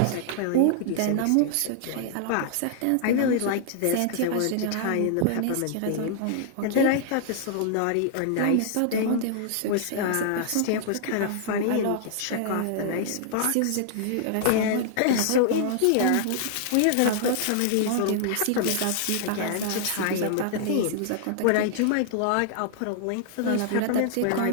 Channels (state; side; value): different; both; correlation -0.01